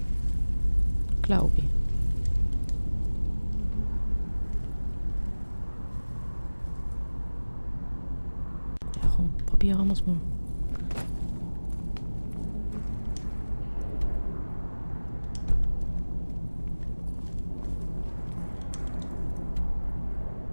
glaube ich. Ja komm, probieren wir es mal.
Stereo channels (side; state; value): both; inverted; correlation -1.00